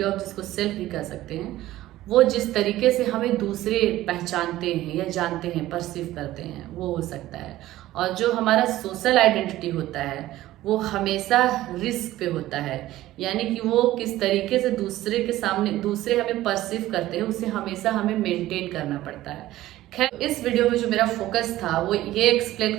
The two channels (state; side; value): quieter; left; 15.4 dB